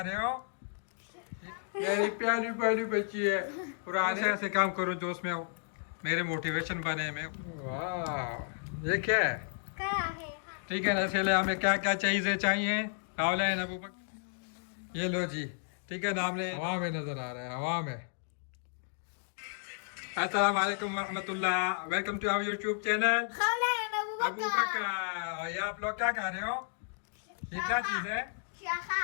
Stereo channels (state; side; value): silent; right; digital silence